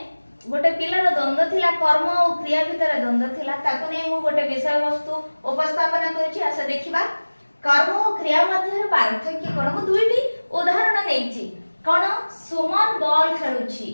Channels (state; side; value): inverted; both; correlation -1.00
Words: गोटे पिलार द्वंद्व थिला कर्म और क्रिया भितर द्वंद्व थिला ताको नै मु गोटे विषय वस्तु उपस्थापन करछि। आसे देखिबा कर्म और क्रिया मध्य पार्थक्य कोन। मु दुईटी उदाहरण नेछि। कोन सुमन बॉल खेलुछि।